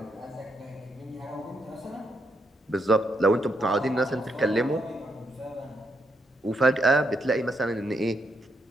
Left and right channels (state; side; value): normal; both; correlation 0.78